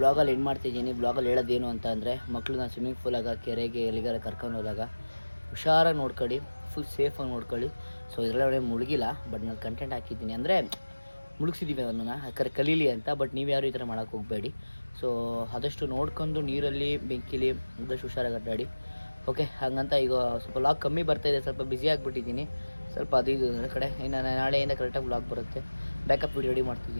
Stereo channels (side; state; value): both; inverted; correlation -1.00